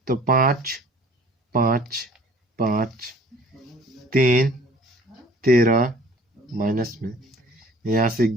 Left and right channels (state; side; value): normal; both; correlation 0.51